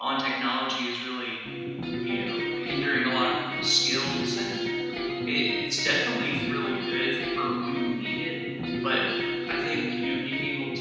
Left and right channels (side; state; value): both; identical; correlation 1.00